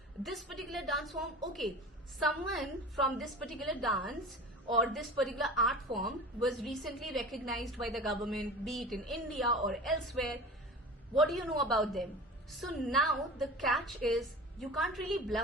This particular dance form, okay, someone from this particular dance or this particular art form was recently recognized by the government, be it in India or elsewhere. What do you know about them? So now the catch is you can't really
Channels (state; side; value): normal; both; correlation 0.35